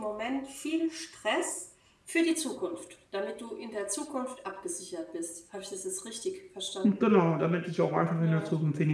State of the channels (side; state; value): both; identical; correlation 1.00